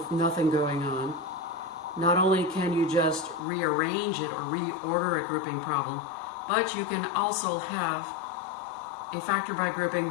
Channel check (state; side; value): drops out; right; at 3.4 s